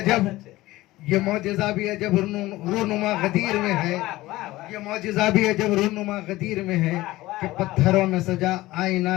ये मौजिज़ा भी अजब रूनुमा गदीर में है। ये मौजिज़ा भी अजब रूनुमा गदीर में है कि पत्थरों में सजा आईना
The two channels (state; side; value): quieter; right; 17.9 dB